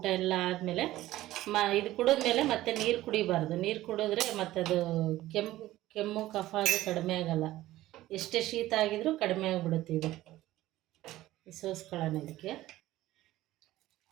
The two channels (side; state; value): left; quieter; 15.7 dB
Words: ಎಲ್ಲ ಆದಮೇಲೆ ಇದು ಕುಡಿದ್ಮೇಲೆ ಮತ್ತೆ ನೀರು ಕುಡಿಬಾರ್ದು. ನೀರು ಕುಡಿದ್ರೆ ಮತ್ತದು ಕೆಮ್ಮು ಕಫ ಅದು ಕಡಿಮೆ ಆಗೋಲ್ಲ. ಎಷ್ಟೇ ಶೀತ ಆಗಿದ್ರೂ ಕಡಿಮೆ ಆಗಿಬಿಡುತ್ತೆ ಇದು. ಸೋಸ್ಕೊಳ್ಳೋಣ ಇದಕ್ಕೆ.